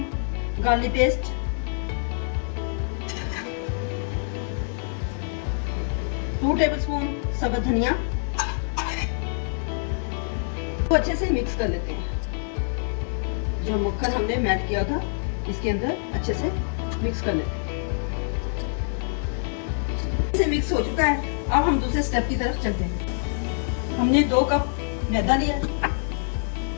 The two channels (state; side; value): silent; right; digital silence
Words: गार्लिक पेस्ट, 2 टेबलस्पून सब्ज धनिया को अच्छे से मिक्स कर लेते हैं। जो मक्खन हमने मैश किया था इसके अंदर अच्छे से मिक्स कर लेते हैं। इसे मिक्स हो चुका है। अब हम दूसरे स्टेप की तरफ चलते हैं। हमने 2 कप मैदा लिया।